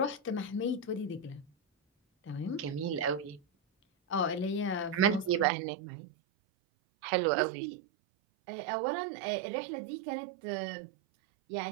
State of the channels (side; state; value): left; drops out; at 5.5 s